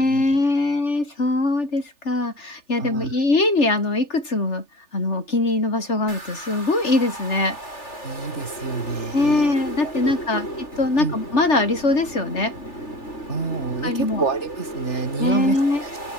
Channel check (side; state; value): right; late; 3.4 ms